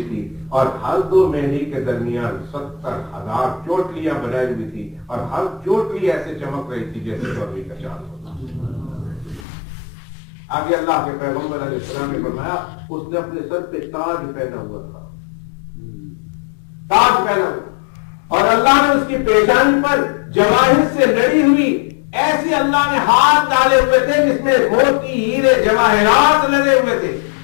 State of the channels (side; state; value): right; drops out; at 9.5 s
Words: تھی اور ہر 2 مہندی کے درمیان 70,000 چوٹلیاں بنائی ہوئی تھی اور ہر چوٹلی ایسے چمک رہی تھی جیسے چودھری کا چاند ہوتا. آگے اللہ کے پیغمبر علیہ السلام نے فرمایا اس نے اپنے سر پہ تاج پہنا ہوا تھا, تاج پہنا ہوا, اور اللہ نے اس کی پیشانی پر جواہر سے لڑی ہوئی ایسی اللہ نے ہاتھ ڈالے ہوئے تھے جس میں موتی ہیرے جواہرات لگے ہوئے تھے